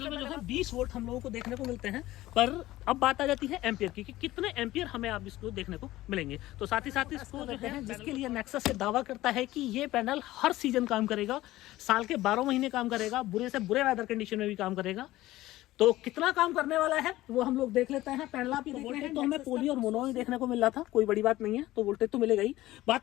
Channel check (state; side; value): quieter; right; 16.5 dB